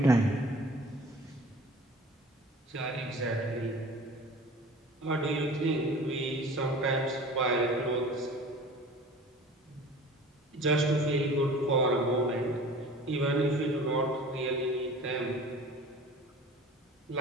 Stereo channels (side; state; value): both; normal; correlation 0.43